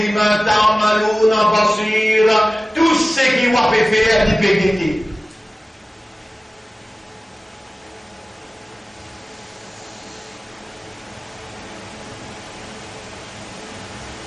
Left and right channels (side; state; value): both; normal; correlation 0.97